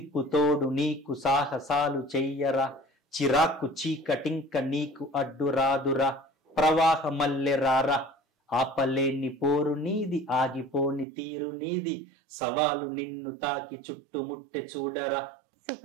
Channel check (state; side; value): drops out; left; at 11.1 s